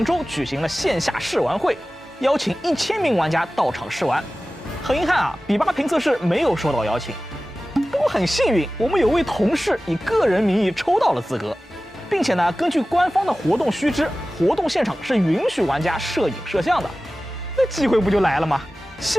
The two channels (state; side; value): normal; both; correlation 0.96